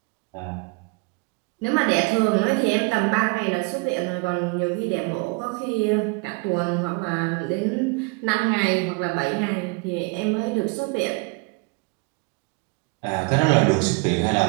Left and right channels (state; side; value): quieter; left; 31.0 dB